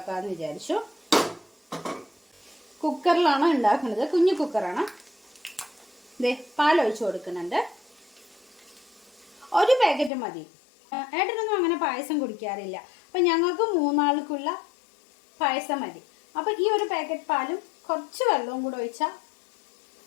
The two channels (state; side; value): drops out; right; at 10.1 s